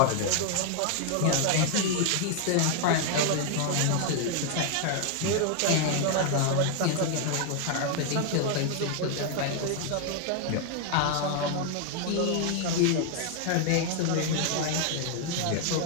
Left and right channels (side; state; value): both; different; correlation 0.00